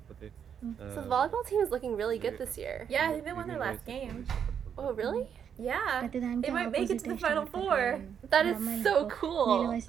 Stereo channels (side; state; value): left; quieter; 8.0 dB